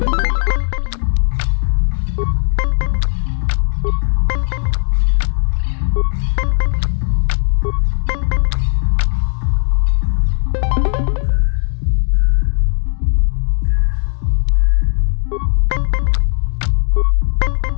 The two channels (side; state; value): right; silent; digital silence